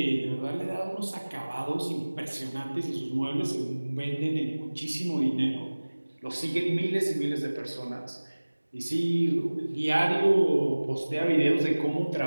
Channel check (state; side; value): inverted; both; correlation -1.00